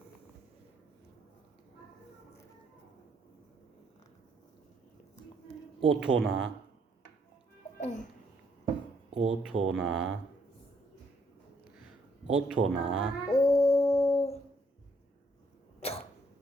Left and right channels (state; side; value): normal; both; correlation 0.69